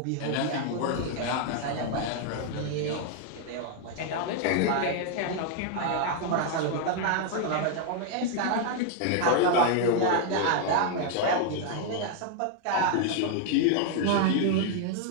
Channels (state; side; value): different; both; correlation 0.00